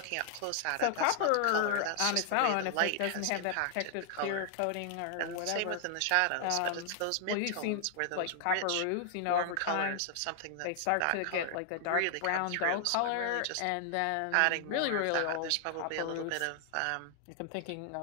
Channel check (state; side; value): different; both; correlation 0.00